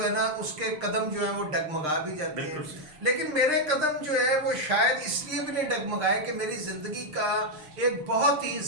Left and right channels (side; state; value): left; late; 6.5 ms